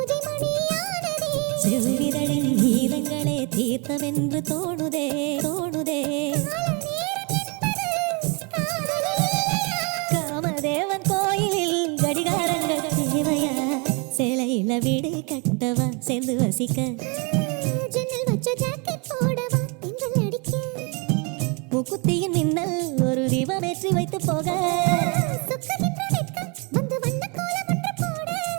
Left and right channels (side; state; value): left; quieter; 32.2 dB